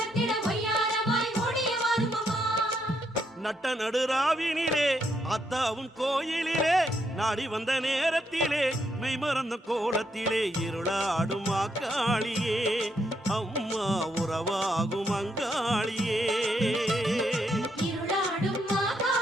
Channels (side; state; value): both; normal; correlation 0.77